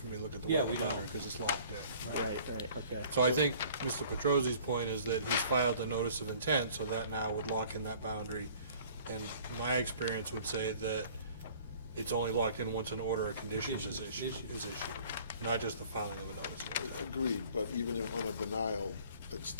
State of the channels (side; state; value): both; inverted; correlation -0.52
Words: me to look at the Yeah, we wetland don't. boundary, because it's locked in. Right, okay. So I think Mr. Petrosi's point is that he's filed a notice of intent, so that now would lock in that boundary And my experience would say that it's only locked in once an order of conditions is issued, not just the filing of a notice. Agreed, but even if on a denial, it's